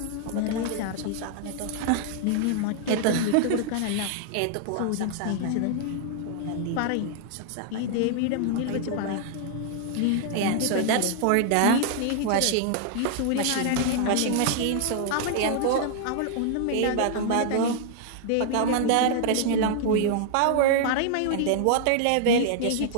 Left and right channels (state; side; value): different; both; correlation -0.01